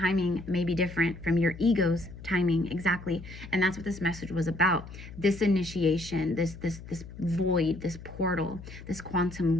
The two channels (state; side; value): noise; left; hum, 14 dB below the sound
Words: may be different from your ego's timing, exactly. And that's what this message was about. This initiation, this void, this portal, this